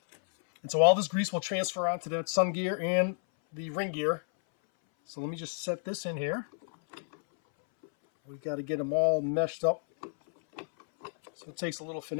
And so all this grease will transfer onto the sun gear and the ring gear. So let me just set this in here. We've got to get them all meshed up. So it takes a little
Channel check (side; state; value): right; silent; 57 dB below the other